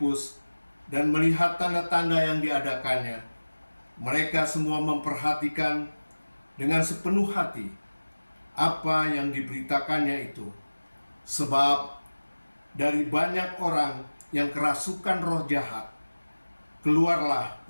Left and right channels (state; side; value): inverted; both; correlation -1.00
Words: dan melihat tanda-tanda yang diadakannya, mereka semua memperhatikan dengan sepenuh hati apa yang diberitakannya itu. Sebab dari banyak orang yang kerasukan roh jahat, keluarlah